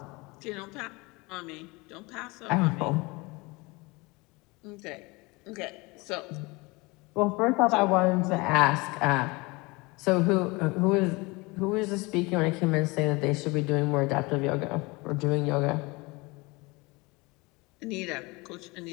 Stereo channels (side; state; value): right; quieter; 25.0 dB